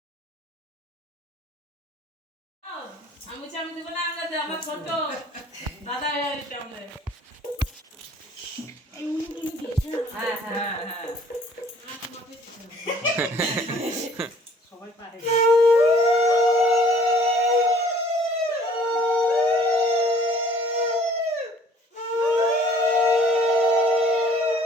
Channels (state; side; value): normal; both; correlation 0.55